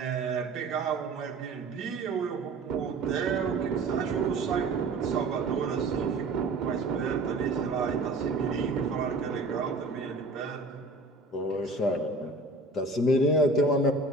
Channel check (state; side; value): quieter; left; 3.1 dB